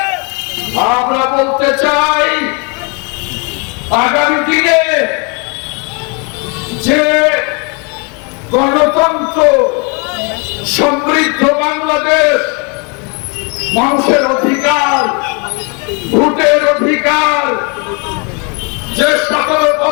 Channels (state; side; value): quieter; right; 34.0 dB